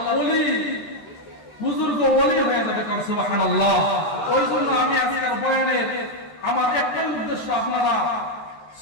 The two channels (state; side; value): late; right; 13 ms